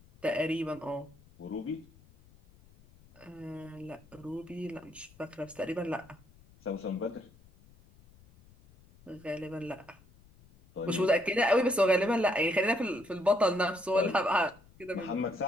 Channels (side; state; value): left; noise; rumble, 26 dB below the sound